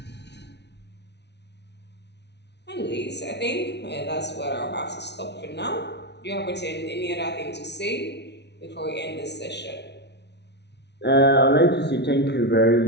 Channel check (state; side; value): late; right; 0.50 ms